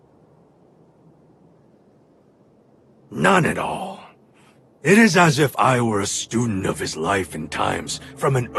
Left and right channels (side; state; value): both; identical; correlation 1.00